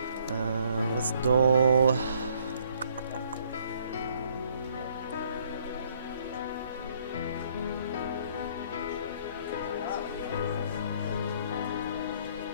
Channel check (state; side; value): inverted; both; correlation -0.64